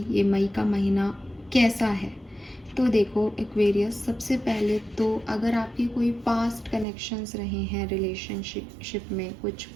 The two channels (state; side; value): drops out; left; at 6.9 s